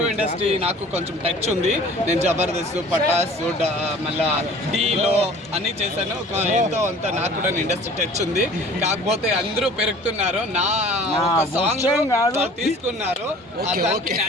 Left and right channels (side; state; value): both; normal; correlation 0.47